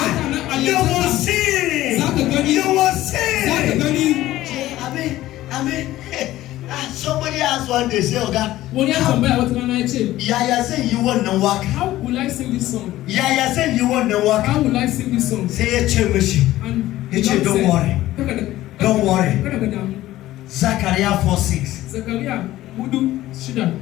you will see. You will see. I mean, somebody asked one day, say, Oga, Yaya said you want to work. How will I sing this song? Yaya said you want to work. How will I sing this song? Say, don't worry. Don't worry. Zaria 4:6.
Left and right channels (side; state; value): right; quieter; 15.4 dB